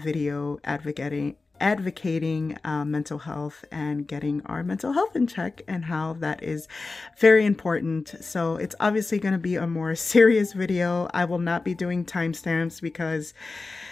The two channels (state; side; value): quieter; right; 3.7 dB